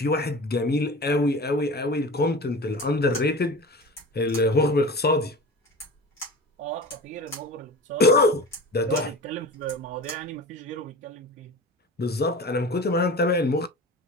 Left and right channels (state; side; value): normal; both; correlation 0.34